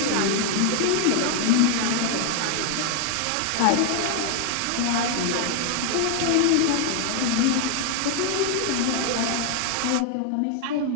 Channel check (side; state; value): both; different; correlation 0.00